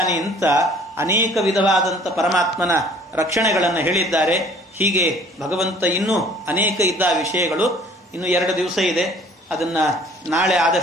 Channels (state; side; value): normal; both; correlation 0.53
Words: ಅಂತ ಅನೇಕ ವಿಧವಾದಂಥ ಪರಮಾತ್ಮನ ರಕ್ಷಣೆಗಳನ್ನು ಹೇಳಿದ್ದಾರೆ. ಹೀಗೆ ಭಗವಂತ ಇನ್ನೂ ಅನೇಕ ಇದ್ದ ವಿಷಯಗಳು. ಇನ್ನು 2 ದಿವಸ ಇದೆ, ಅದನ್ನ ನಾಳೆ